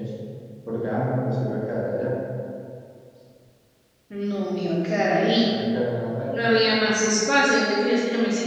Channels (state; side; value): identical; both; correlation 1.00